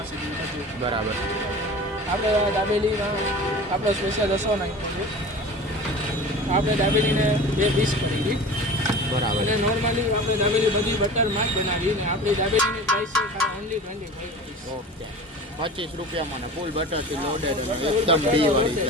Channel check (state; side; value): normal; both; correlation 0.37